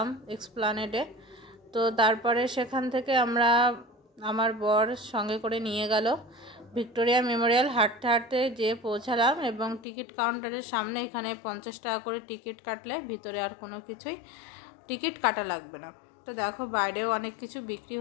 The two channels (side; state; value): right; drops out; at 9.9 s